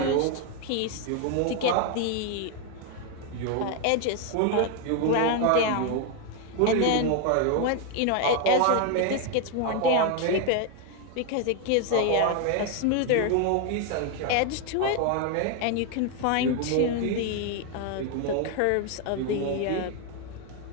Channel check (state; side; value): different; both; correlation 0.01